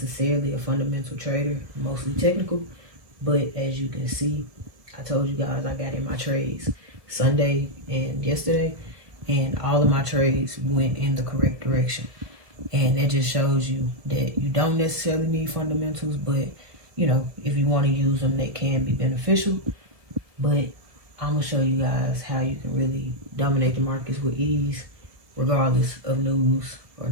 a fundamental trader, mostly technical, but as you can see, I told you guys I got in my trades Sunday and yesterday, and all of my trades went in the correct direction. And that just shows you that you don't necessarily need fundamentals, but you know, if you want to use them, they can be beneficial. But I'm gonna show you guys how you can really dominate the markets with ease, regardless of news or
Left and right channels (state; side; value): late; left; 1.7 ms